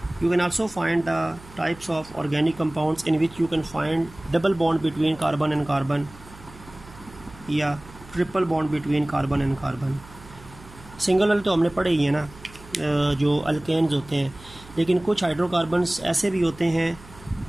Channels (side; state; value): right; noise; hum, 20 dB below the sound